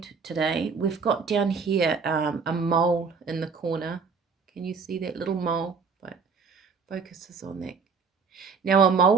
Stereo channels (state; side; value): quieter; left; 5.3 dB